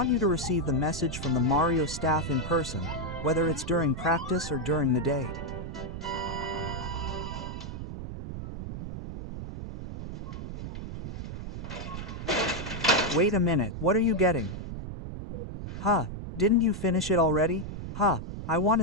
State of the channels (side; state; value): right; noise; rumble, 7 dB below the sound